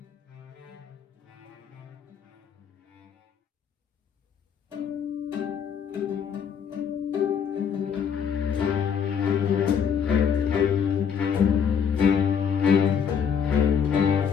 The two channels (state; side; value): quieter; right; 7.3 dB